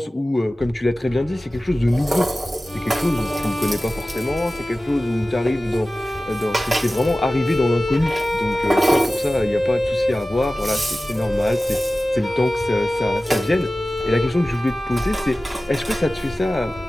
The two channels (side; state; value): both; normal; correlation 0.96